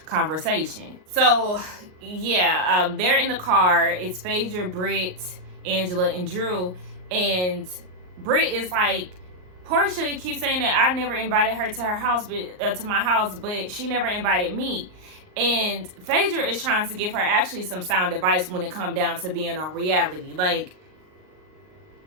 conversation. So yeah, they're in the car. It's Phaedra, Britt, Angela, and Drew. And Britt is like, Portia keeps saying that I never invited her to her house, but to my house, but she never invited me. And Phaedra is trying to give her actually some sound advice when it comes down to being on reality. Like,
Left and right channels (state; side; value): late; left; 38 ms